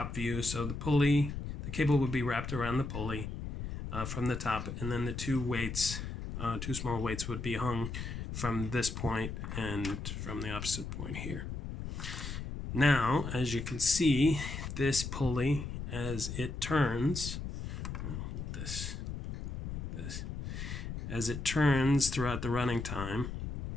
view. So the cable would be wrapped around the pulley from the top, and then the two small weights would be hung from this point and from the opposite point here. Now, as you can see, this pulley, as it turns, as it turns throughout the running time,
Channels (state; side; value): noise; left; rumble, 6 dB below the sound